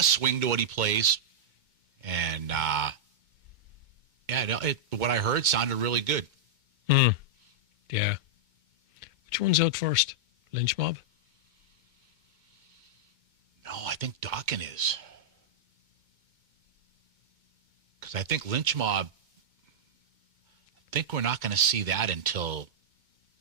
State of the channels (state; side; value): late; left; 2.2 ms